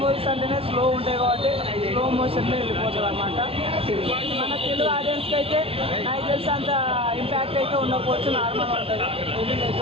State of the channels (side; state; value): left; late; 0.27 ms